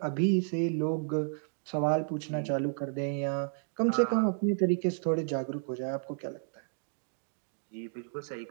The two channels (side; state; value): left; silent; digital silence